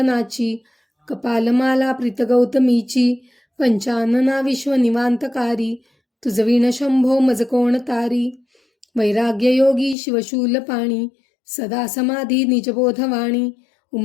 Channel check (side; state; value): right; drops out; at 10.0 s